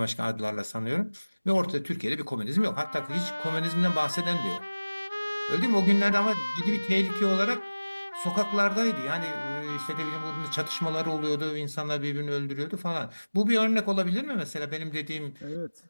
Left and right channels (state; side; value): inverted; both; correlation -1.00